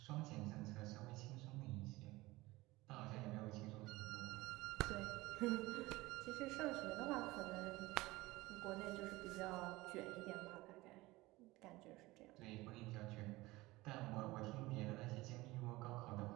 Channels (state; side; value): quieter; left; 20.0 dB